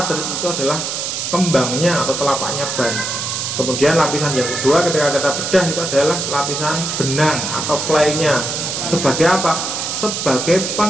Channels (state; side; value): noise; right; hiss, 3 dB below the sound